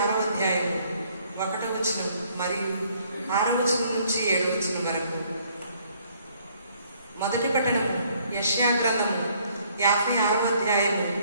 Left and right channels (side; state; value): both; inverted; correlation -0.64